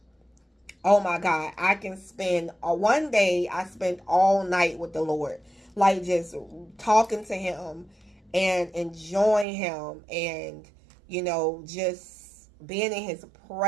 oh my God, I can spend one day, I spent all night with the Lord, like just talking to him and enjoying him, and, you know, just being in his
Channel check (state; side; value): drops out; left; at 9.5 s